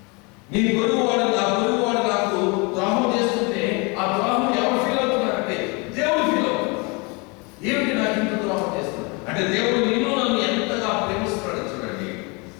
నీ పొరుగువాడు, నా పొరుగువాడు నాకు ద్రోహం చేస్తుంటే ఆ ద్రోహం ఎవరు ఫీల్ అవుతున్నారంటే దేవుడు ఫీల్ అవుతున్నాడు. ఏమిటి నాకు ఇంత ద్రోహం చేస్తున్నాడు అంటే దేవుడు నిన్ను నన్ను ఎంతగా ప్రేమిస్తున్నాడు. చూడండి,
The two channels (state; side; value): quieter; right; 29.8 dB